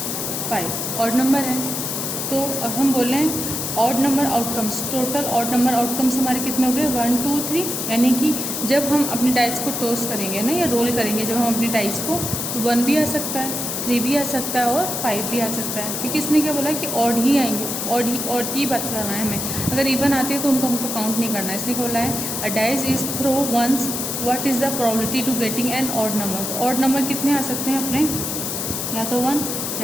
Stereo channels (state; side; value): noise; left; hiss, 3 dB below the sound